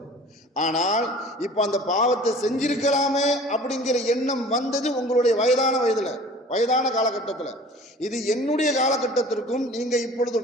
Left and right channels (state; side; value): normal; both; correlation 0.45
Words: ஆனால் இப்போ அந்த பாவத்தை செஞ்சிருக்கலாமே அப்படிங்கிற எண்ணம் வந்தது உங்களுடைய வயதான காலகட்டத்தில். இது என்னுடைய காலகட்டத்திற்கும் நீங்கள் இப்பொழுது